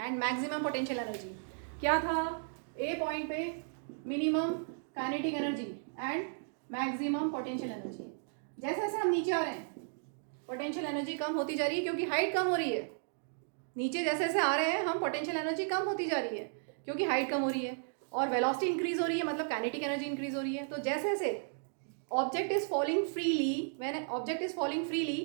maximum potential energy. क्या था A point पे minimum kinetic energy and maximum potential energy. जैसे जैसे हम नीचे आ रहे हैं पोटेंशियल एनर्जी कम होती जा रही है क्योंकि हाइट कम हो रही है। नीचे जैसे जैसे आ रहे हैं हम पोटेंशियल एनर्जी कम होती जा रही है क्योंकि हाइट कम हो रही है और वेलोसिटी इंक्रीज हो रही है, मतलब काइनेटिक एनर्जी इंक्रीज हो रही है। तो जैसे जैसे object is falling freely, when an object is falling freely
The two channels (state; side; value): silent; left; digital silence